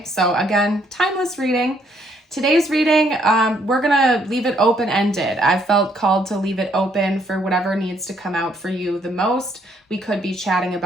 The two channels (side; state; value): both; normal; correlation 0.69